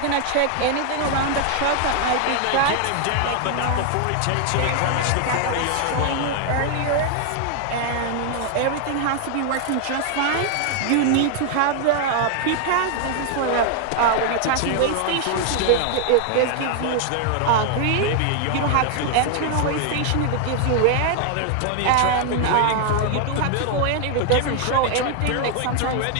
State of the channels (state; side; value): different; both; correlation 0.00